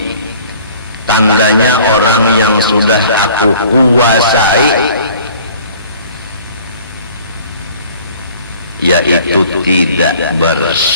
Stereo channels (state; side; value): inverted; both; correlation -0.50